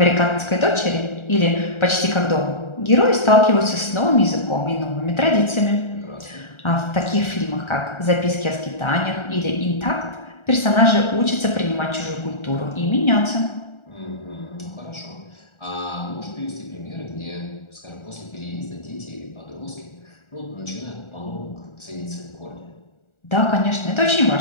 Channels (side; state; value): right; late; 1.4 ms